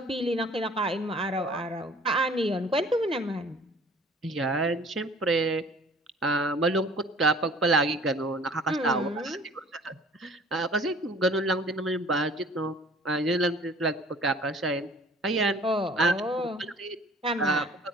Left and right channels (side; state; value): both; normal; correlation 0.51